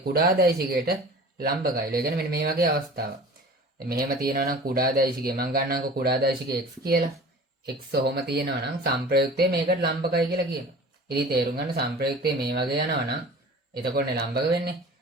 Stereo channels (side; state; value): both; normal; correlation 0.41